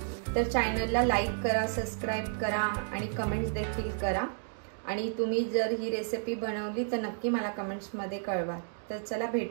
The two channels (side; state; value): left; silent; digital silence